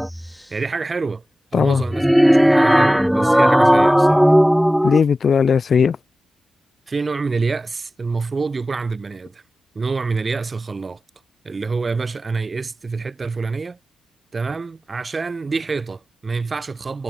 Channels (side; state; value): both; normal; correlation 0.95